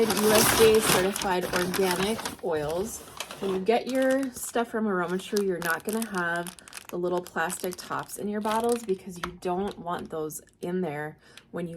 USDA certified organic oils. When you get your stuff from AromaTru, you're not gonna have the little plastic tops in your bottles because you don't want those in there when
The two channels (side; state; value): both; identical; correlation 1.00